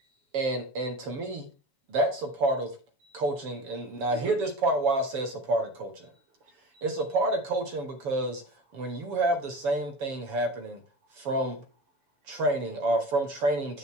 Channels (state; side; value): late; left; 7.1 ms